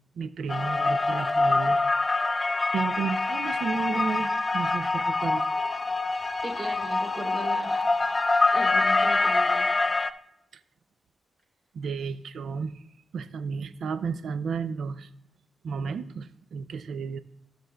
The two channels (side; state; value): both; normal; correlation 0.93